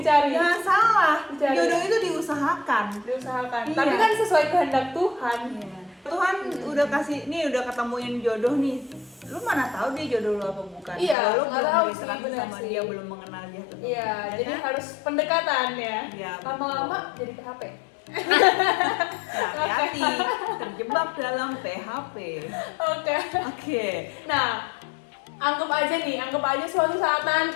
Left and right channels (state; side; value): drops out; right; at 11.2 s